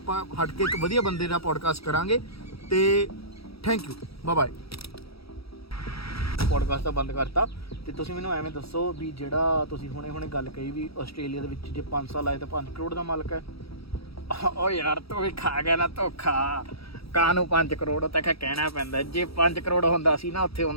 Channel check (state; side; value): late; right; 0.76 ms